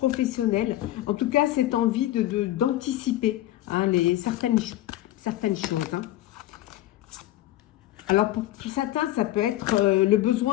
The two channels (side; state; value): right; quieter; 14.8 dB